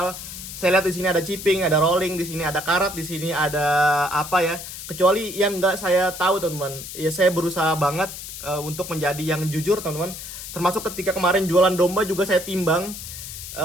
saya lihat di sini ada chipping, ada rolling, di sini ada karat, di sini ada apa ya. Kecuali yang nggak saya tahu, teman-teman. Ya saya berusaha banget untuk menjadi yang jujur, teman-teman. Termasuk ketika kemarin jualan domba juga saya timbang.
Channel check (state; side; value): noise; left; hiss, 10 dB below the sound